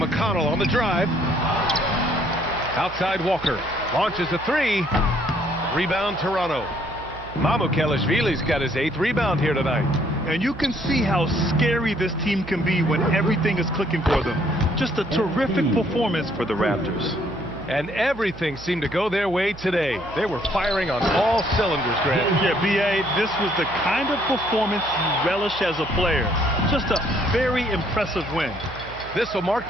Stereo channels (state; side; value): noise; right; hum, 16 dB below the sound